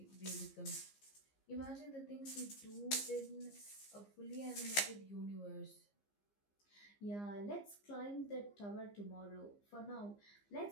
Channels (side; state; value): right; late; 15 ms